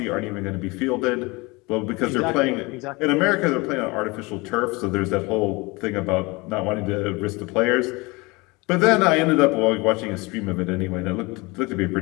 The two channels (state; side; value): quieter; right; 25.0 dB